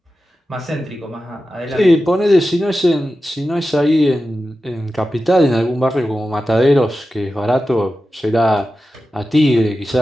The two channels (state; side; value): normal; both; correlation 0.93